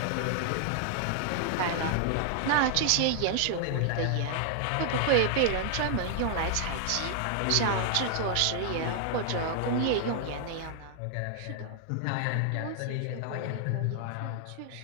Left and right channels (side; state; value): both; different; correlation 0.00